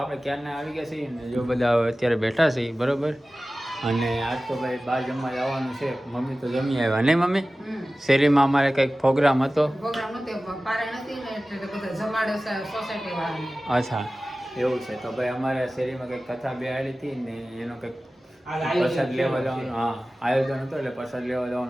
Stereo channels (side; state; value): both; normal; correlation 0.96